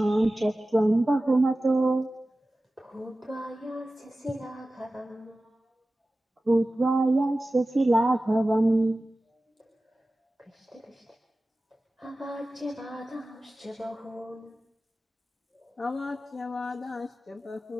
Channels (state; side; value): normal; both; correlation 0.96